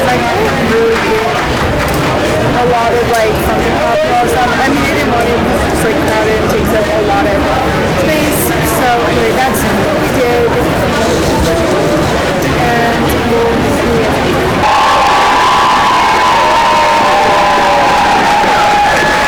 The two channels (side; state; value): both; identical; correlation 1.00